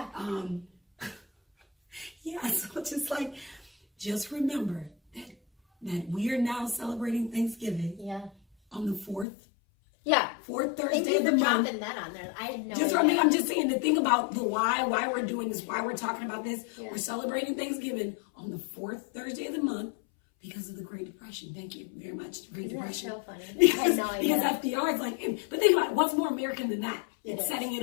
Yeah. So just remember that we are now celebrating Thanksgiving. Yeah. On the 4th. Yeah. 4th Thursday of the month. Dropping that on there. I had no idea. I'm just saying, the thing about the why we're doing this, why we're talking about this. Yeah. We're celebrating Thanksgiving on the 4th Thursday of the month because of the Great Depression. Thank you very much, Great Depression. That's so funny. Because FDR is like, but think about it, what's more American than that? It's setting it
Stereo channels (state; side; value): drops out; right; at 9.2 s